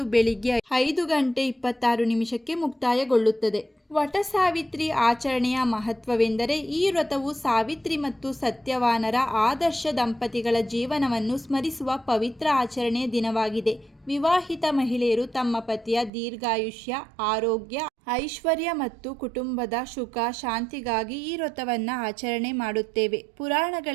ಬೆಳಿಗ್ಗೆ 5:26 ಮುಕ್ತಾಯಗೊಳ್ಳುತ್ತದೆ. ವಟ ಸಾವಿತ್ರಿ ಆಚರಣೆಯ ಮಹತ್ವವೆಂದರೆ ಈ ವ್ರತವು ಸಾವಿತ್ರಿ ಮತ್ತು ಸತ್ಯವಾನರ ಆದರ್ಶ ದಂಪತಿಗಳ ಜೀವನವನ್ನು ಸ್ಮರಿಸುವ ಪವಿತ್ರ ಆಚರಣೆಯ ದಿನವಾಗಿದೆ. ವಿವಾಹಿತ ಮಹಿಳೆಯರು ತಮ್ಮ ಪತಿಯ ದೀರ್ಘಾಯುಷ್ಯ, ಆರೋಗ್ಯ, ಐಶ್ವರ್ಯ ಮತ್ತು ಕುಟುಂಬದ ಸುಖ ಶಾಂತಿಗಾಗಿ ಈ ವ್ರತವನ್ನು ಆಚರಣೆ ಮಾಡುತ್ತೇವೆ.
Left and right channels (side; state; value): left; drops out; at 16.1 s